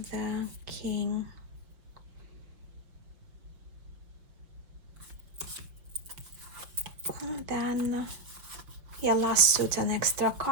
the king. And then yeah, last suit an extra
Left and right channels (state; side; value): late; left; 5.6 ms